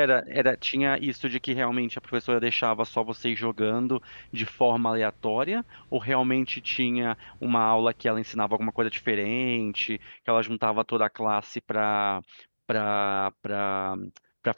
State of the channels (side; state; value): both; inverted; correlation -1.00